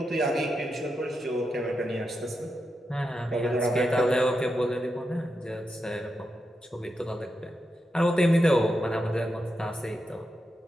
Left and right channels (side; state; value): both; normal; correlation 0.87